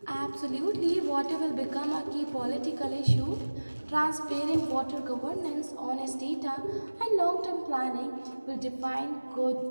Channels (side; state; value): both; inverted; correlation -1.00